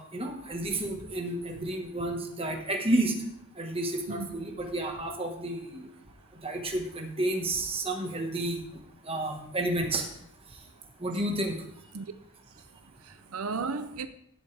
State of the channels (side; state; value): both; normal; correlation 0.46